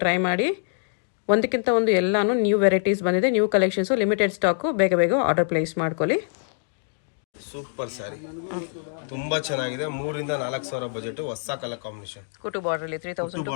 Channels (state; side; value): silent; right; digital silence